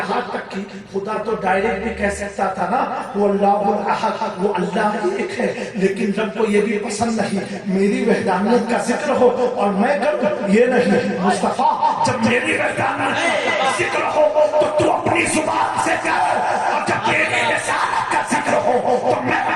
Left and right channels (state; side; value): identical; both; correlation 1.00